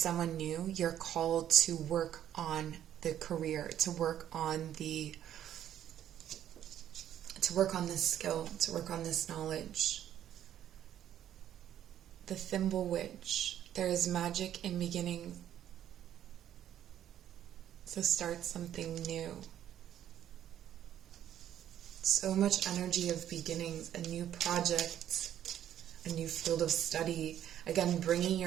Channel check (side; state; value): left; quieter; 10.9 dB